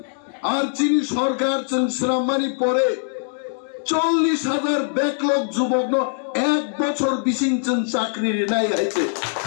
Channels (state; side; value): silent; right; digital silence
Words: আর চিনি সরকার চুন শ্রম মানি পরে 40,000 ব্যাকলগ যুবক এক বছর বিশিংচন চাকরি নাই হয়েছে